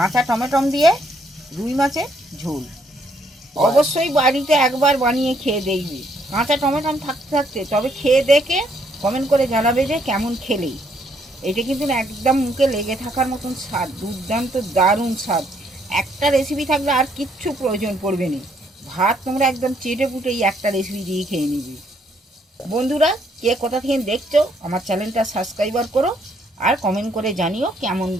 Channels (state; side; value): normal; both; correlation 0.70